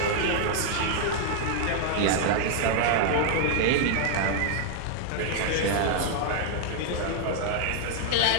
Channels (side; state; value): both; different; correlation 0.00